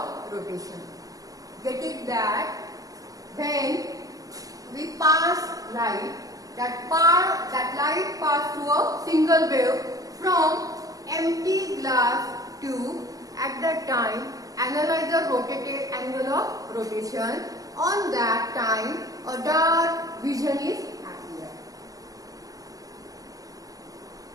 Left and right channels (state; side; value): late; left; 0.17 ms